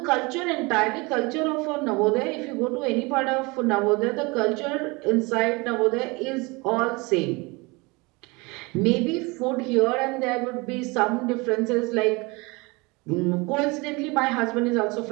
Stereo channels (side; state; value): left; quieter; 26.0 dB